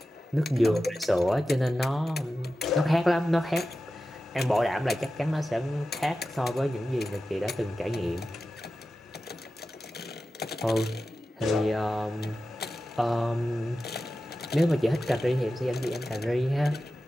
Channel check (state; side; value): normal; both; correlation 0.93